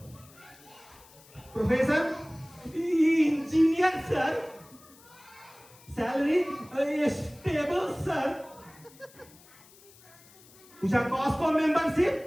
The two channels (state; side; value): noise; left; hiss, 25 dB below the sound